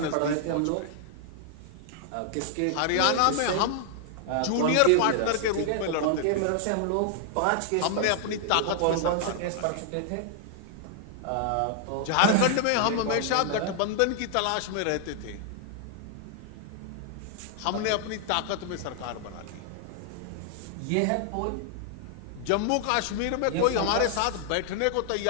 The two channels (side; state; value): both; different; correlation 0.00